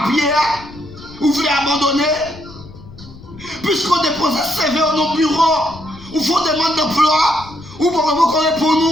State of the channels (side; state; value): left; noise; rumble, 19 dB below the sound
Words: Vous voulez abandonner? Puisqu'on dépose un CV dans nos bureaux, ou faut demande d'emploi, ou pour répondre